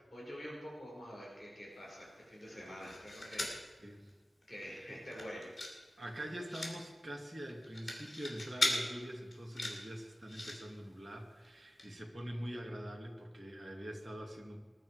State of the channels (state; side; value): normal; both; correlation 0.95